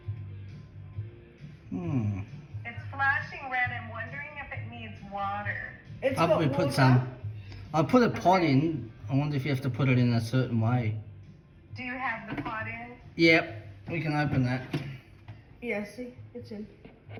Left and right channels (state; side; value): identical; both; correlation 1.00